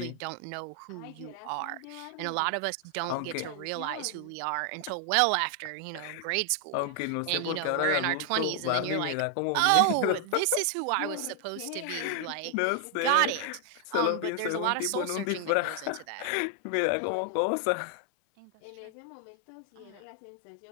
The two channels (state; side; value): different; both; correlation 0.00